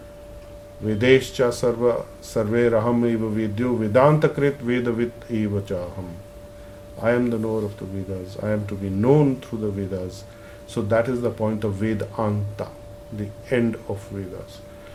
Vedescha sarve raham eva vedyo vedantakrit vedavit eva chaham. I am the knower of the Vedas. I am to be known through the Vedas. So that is the point of Vedanta, the end of Vedas.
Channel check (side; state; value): both; identical; correlation 1.00